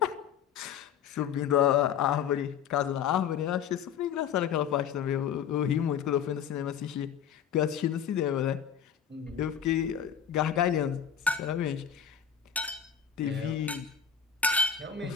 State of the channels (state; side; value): quieter; right; 8.3 dB